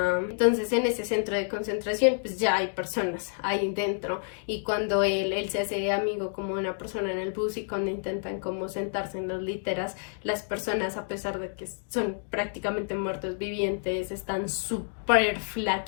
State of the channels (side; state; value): right; silent; digital silence